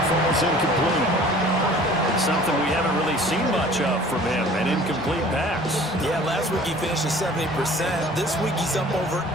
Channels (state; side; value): normal; both; correlation 0.49